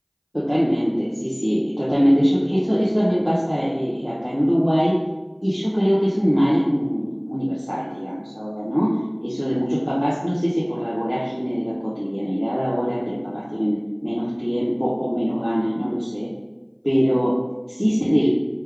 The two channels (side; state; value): both; identical; correlation 1.00